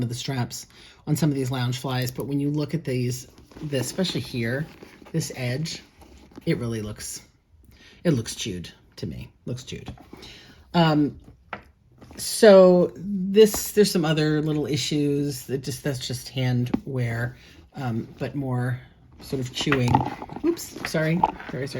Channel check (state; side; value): identical; both; correlation 1.00